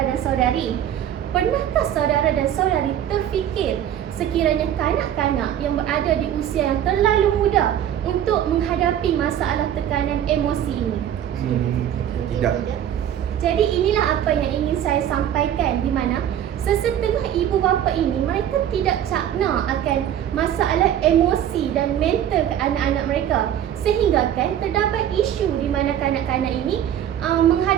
dan saudari, pernahkah saudara dan saudari terfikir sekiranya kanak-kanak yang berada di usia yang terlalu muda untuk menghadapi masalah tekanan emosi ini? Tidak. Jadi inilah apa yang ingin saya sampaikan, di mana sesetengah ibu bapa ini mereka tidak cakna akan masalah emosi dan mental ke anak-anak mereka, sehingga kan terdapat isu di mana kanak-kanak ini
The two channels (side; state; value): left; quieter; 10.4 dB